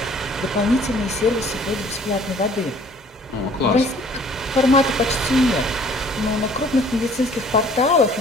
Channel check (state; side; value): normal; both; correlation 0.55